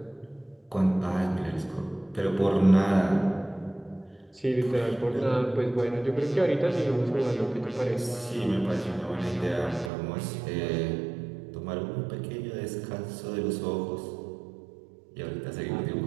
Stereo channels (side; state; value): left; drops out; at 9.9 s